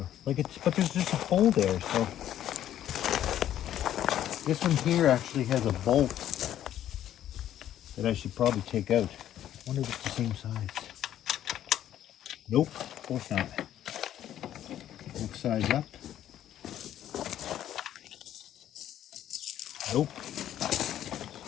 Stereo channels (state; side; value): quieter; right; 11.5 dB